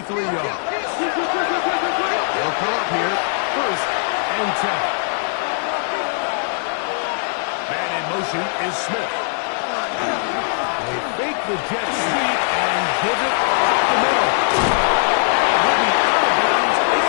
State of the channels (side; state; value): right; silent; digital silence